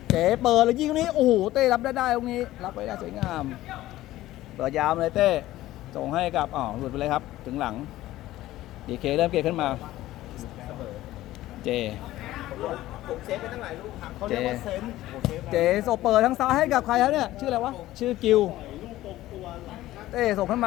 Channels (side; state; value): right; quieter; 15.6 dB